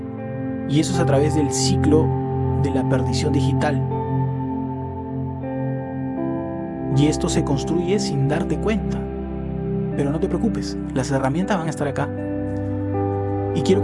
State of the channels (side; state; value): both; identical; correlation 1.00